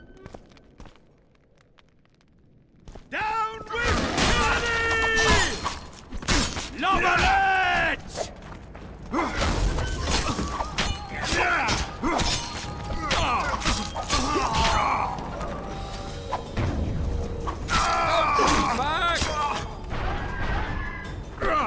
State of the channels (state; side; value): identical; both; correlation 1.00